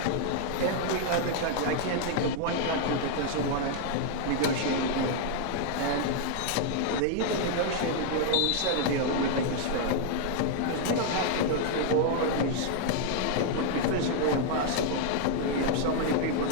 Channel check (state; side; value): different; both; correlation 0.00